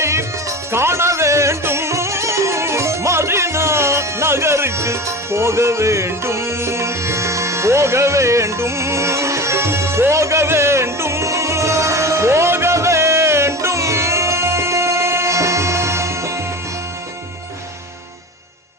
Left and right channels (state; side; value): normal; both; correlation 0.31